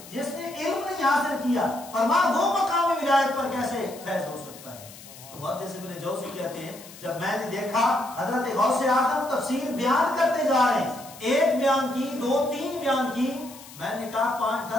جس نے علم نہیں حاصل کیا، فرمایا وہ مقام ولایت پر کیسے فیض ہو سکتا ہے. تو محدث ابن جوزی کہتے ہیں جب میں نے دیکھا حضرت غوث اعظم تفسیر بیان کرتے جا رہے ہیں، ایک بیان کی، دو تین بیان کی، میں نے کہا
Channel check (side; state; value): left; noise; hiss, 18 dB below the sound